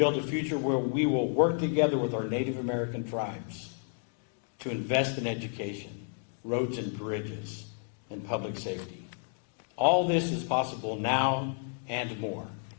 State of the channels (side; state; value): right; silent; 55 dB below the other